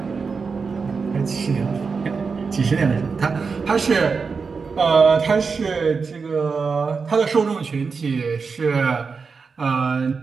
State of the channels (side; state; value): left; quieter; 5.0 dB